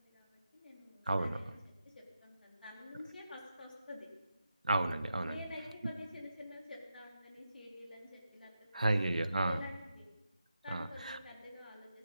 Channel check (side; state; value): both; inverted; correlation -0.86